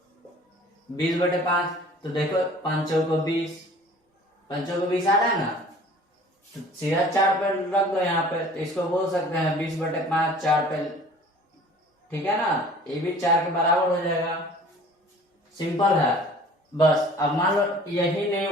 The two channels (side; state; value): both; normal; correlation 0.48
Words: 20/5, तो देखो 5 को 20, 5 को 20 आ रहा है ना, तो सीधा 4 पे रख दो यहाँ पे, तो इसको बोल सकते हैं 20/5 4 पे। ठीक है ना, ये भी 4 के बराबर हो जाएगा, सिंपल है। बस अब मान लो यही नहीं,